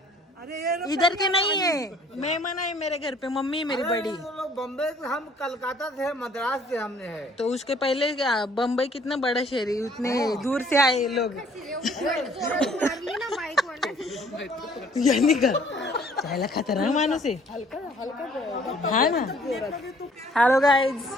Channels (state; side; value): normal; both; correlation 0.58